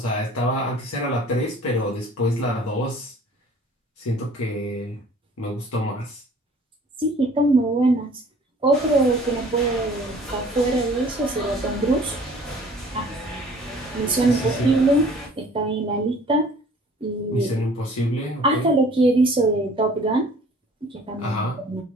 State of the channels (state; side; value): normal; both; correlation 0.51